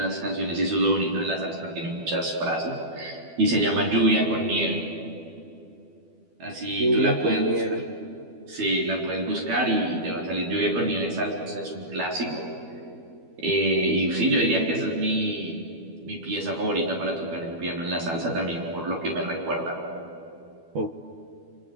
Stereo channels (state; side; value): late; left; 12 ms